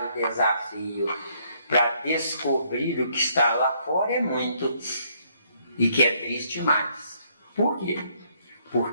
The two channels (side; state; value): both; inverted; correlation -0.68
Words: o desafio para descobrir o que está lá fora, é muito. E que é triste demais. Por quê?